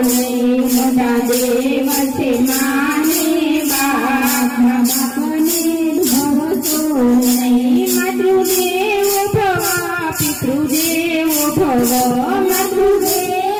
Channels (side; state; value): both; identical; correlation 1.00